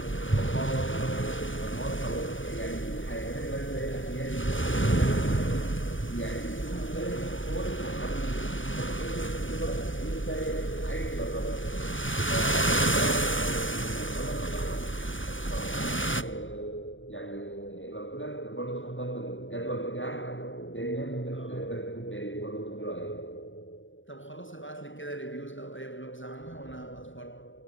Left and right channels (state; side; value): late; right; 0.57 ms